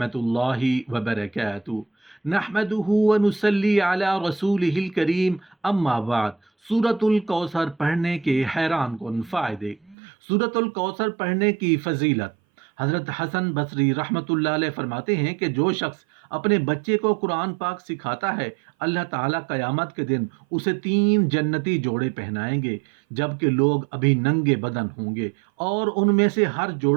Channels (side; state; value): left; drops out; at 10.0 s